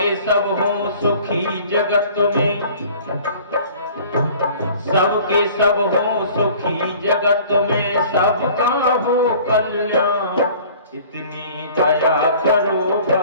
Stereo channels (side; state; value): both; inverted; correlation -0.49